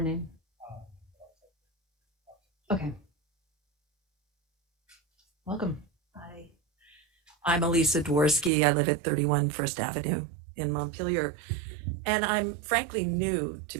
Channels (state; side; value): drops out; left; at 8.5 s